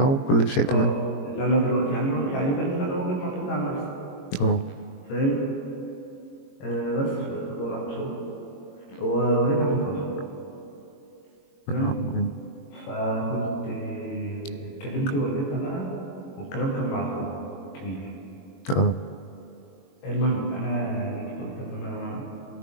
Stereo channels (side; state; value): right; late; 22 ms